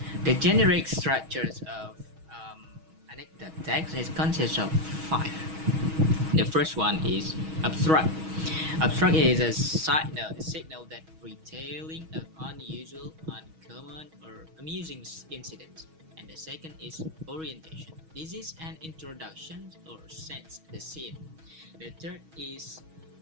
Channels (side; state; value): left; late; 6.3 ms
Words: The generic structures of anecdote text consists of five. The first one is abstract. Abstract is a signal that retelling of unusual, uncommon, or amusing incidents. And the second is orientation. This is an introduction or sets the scene. The third is